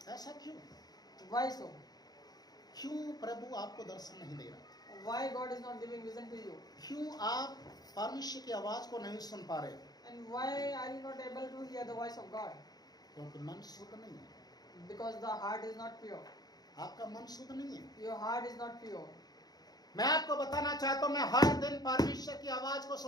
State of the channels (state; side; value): late; right; 0.19 ms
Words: ऐसा क्यों? Why so? क्यों प्रभु आपको दर्शन नहीं दे रहा? Why God is not giving vision to you? क्यों आप परमेश्वर की आवाज को नहीं सुन पा रहे? And why are you not able to hear the voice of God? क्योंकि मन शुद्ध नहीं है। Because the heart is not pure. आपका मन शुद्ध नहीं है। Your heart is not pure. मैं आपको बताना चाहता हूँ, मैं हर दिन परमेश्वर की आवाज को